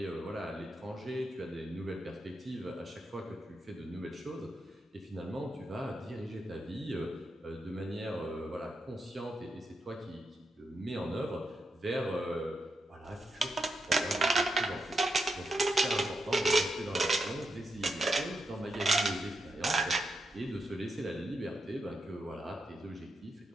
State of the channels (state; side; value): normal; both; correlation 0.84